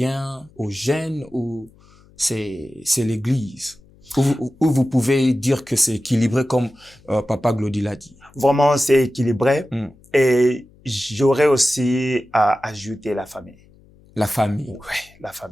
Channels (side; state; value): left; noise; hum, 28 dB below the sound